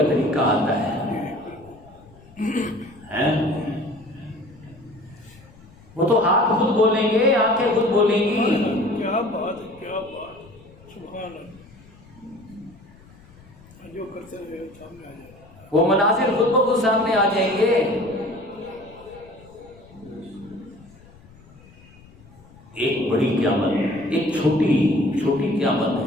طریقہ آتا ہے۔ وہ تو ہاتھ خود بولیں گے، آنکھیں خود بولیں گی۔ کیا بات ہے، کیا بات، سبحان اللہ۔ جو کرتے رہے سامنے آ جائے، وہ مناظر خود بخود سامنے آ جائیں گے۔ ایک بڑی قیامت، ایک چھوٹی قیامت ہے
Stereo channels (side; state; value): left; noise; rumble, 24 dB below the sound